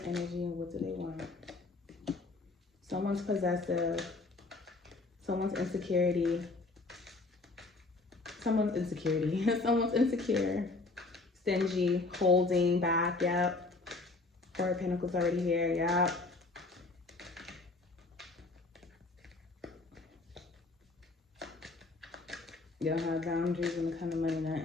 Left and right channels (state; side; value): quieter; right; 3.4 dB